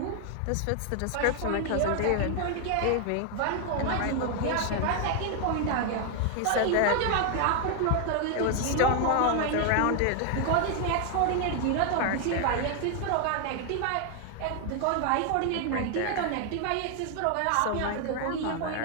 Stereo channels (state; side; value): different; both; correlation 0.00